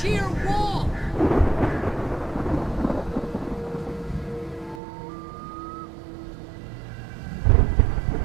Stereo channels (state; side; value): drops out; left; at 4.8 s